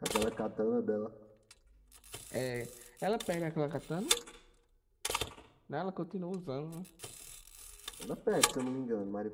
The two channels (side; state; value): both; identical; correlation 1.00